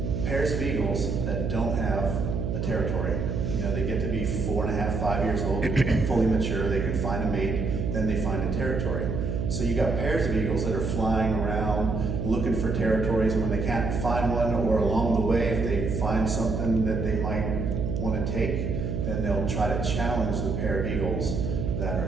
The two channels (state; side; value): noise; right; hum, 1 dB below the sound